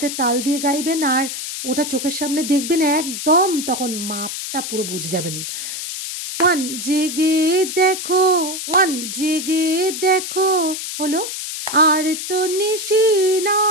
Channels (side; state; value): left; noise; hiss, 6 dB below the sound